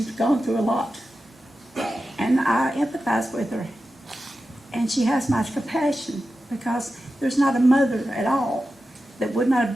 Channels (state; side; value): normal; both; correlation 0.92